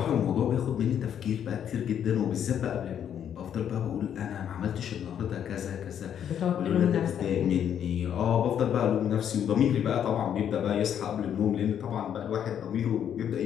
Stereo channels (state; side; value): quieter; right; 9.2 dB